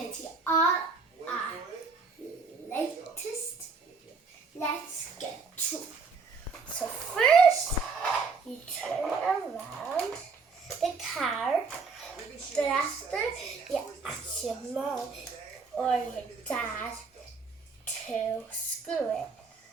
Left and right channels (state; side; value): quieter; left; 4.7 dB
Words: see all our latest. Let's get to it. So first, you turn around the car. Then after, you ask your mom or your dad to screw it.